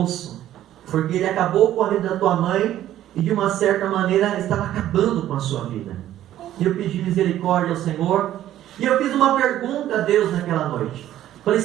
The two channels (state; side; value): quieter; left; 12.6 dB